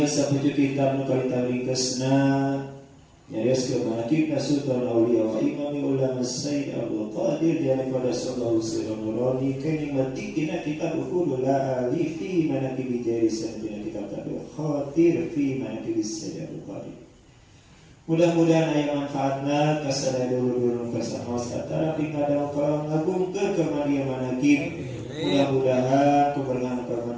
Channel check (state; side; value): identical; both; correlation 1.00